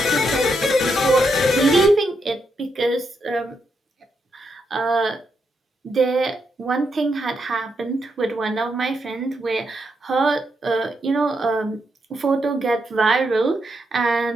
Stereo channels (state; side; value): normal; both; correlation 0.81